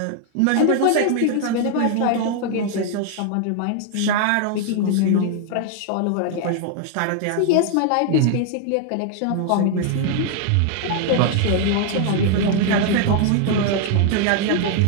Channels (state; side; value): different; both; correlation 0.00